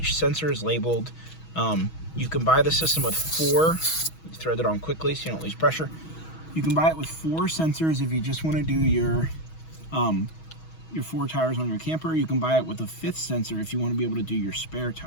sensor is labeled. You can buy the system with 4. You thread it on quickly so you don't lose pressure. You can buy it with 4 sensors if you just want to do your 4 tires on your camper. You can buy it with a 5th sensor if you want to be able to do your spare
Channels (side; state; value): right; late; 6.2 ms